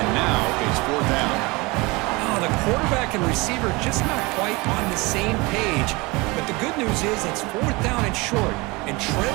now it's 4th down. Oh, the quarterback and receiver just not quite on the same page, but the good news is it's 4th down and short. And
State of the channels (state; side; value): quieter; left; 24.6 dB